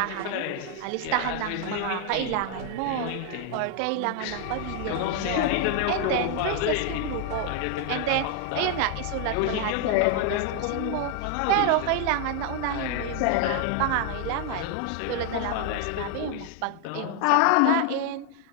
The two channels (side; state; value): both; different; correlation 0.00